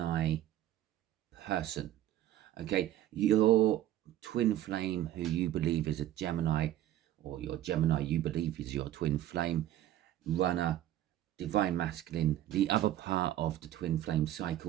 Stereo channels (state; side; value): quieter; left; 13.0 dB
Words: person. Okay, your twin flame, who you believe is a Gemini, or your Gemini you believe is your twin flame, runner, divine masculine, the other part of the twin flame